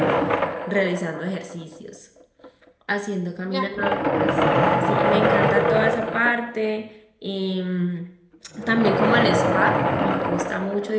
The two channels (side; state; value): both; identical; correlation 1.00